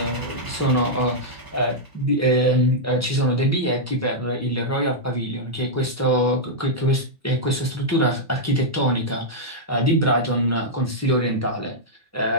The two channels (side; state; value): both; normal; correlation -0.07